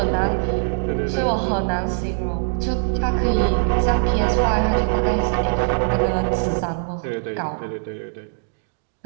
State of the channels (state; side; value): silent; left; digital silence